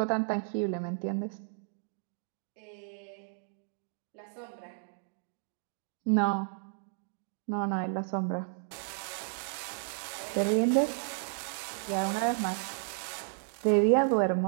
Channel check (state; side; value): silent; left; digital silence